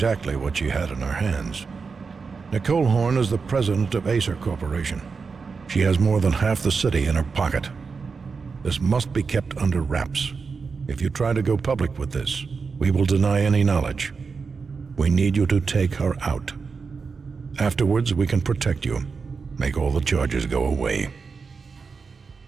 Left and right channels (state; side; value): quieter; left; 5.0 dB